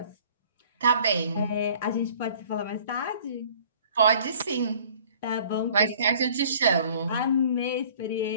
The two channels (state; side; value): inverted; both; correlation -0.52